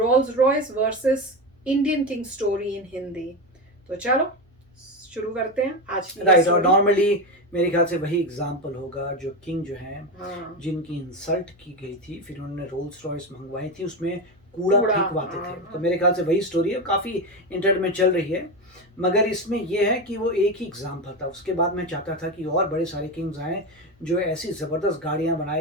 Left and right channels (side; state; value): both; normal; correlation 0.17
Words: Royce versus Indian king story in Hindi. तो चलो शुरू करते हैं आज की राइट। और नॉर्मली मेरे ख्याल से वही एग्जाम्पल होगा जो किंग जो है जिनकी इंसल्ट की गई थी, फिर उन्होंने रोल्स रॉयस मंगवाई थी, उसमें कूड़ा फेंकवाते थे। तो मेरे ख्याल से वही स्टोरी है, काफ़ी इंटरनेट में चल रही है। मगर इसमें यह है कि वो एक ही एग्जाम्पल था। उसके बाद मैं चाहता था कि और बड़े सारे किंग्स आए जो ऐसी ज़बरदस्त गाड़ियाँ